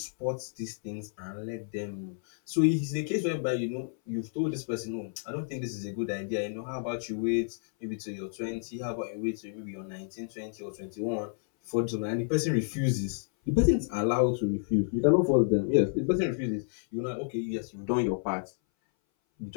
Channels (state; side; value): silent; right; 58 dB below the other